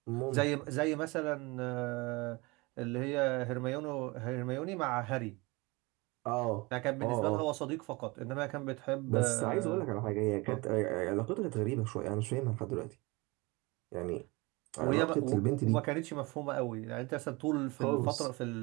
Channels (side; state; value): left; quieter; 25.0 dB